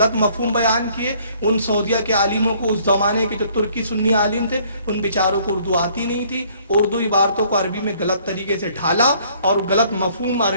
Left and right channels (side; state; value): both; inverted; correlation -0.61